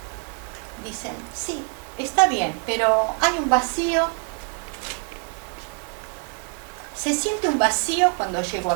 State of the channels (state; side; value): quieter; left; 39.7 dB